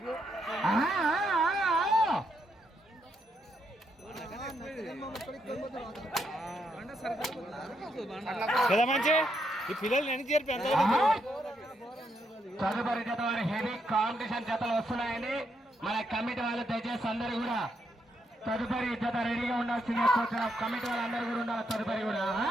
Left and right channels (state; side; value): normal; both; correlation 0.78